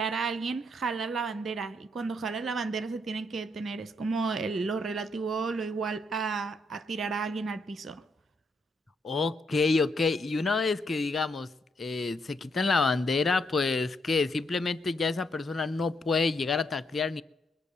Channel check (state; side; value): normal; both; correlation 0.76